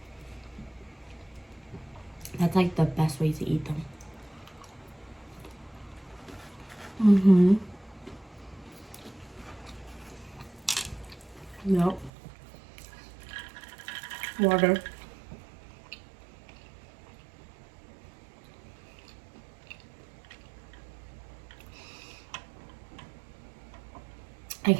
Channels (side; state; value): left; drops out; at 12.1 s